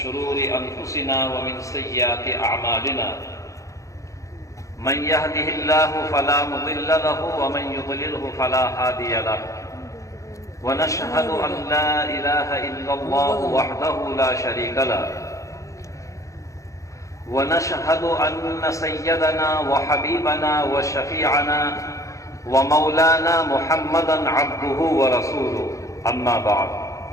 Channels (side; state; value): right; late; 0.15 ms